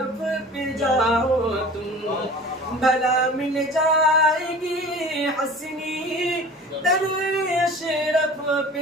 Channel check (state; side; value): normal; both; correlation 0.41